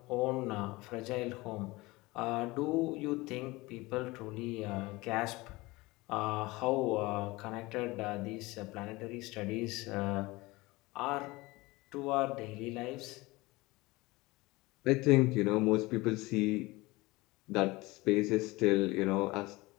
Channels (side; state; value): right; quieter; 21.7 dB